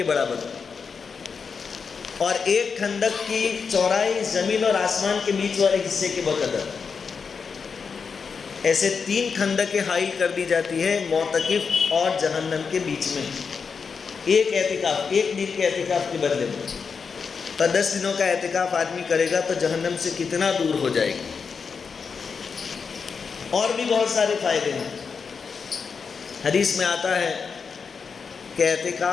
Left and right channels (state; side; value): quieter; right; 5.6 dB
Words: برابر، اور 1 خندق کی چوڑائی زمین اور آسمان کے بیچ والے حصے کے بقدر، ایسے 3 خندقیں حائل کر دی جاتی ہے معتکف اور جہنم کے بیچ میں، ایک دن کے اعتکاف کے بدلے میں۔ تو 10 دنوں کا اعتکاف آدمی کرے گا تو جہنم سے کتنا دور ہو جائے گا۔ اور بھی بہت سارے فائدے ہیں۔ حدیث میں آتا ہے کہ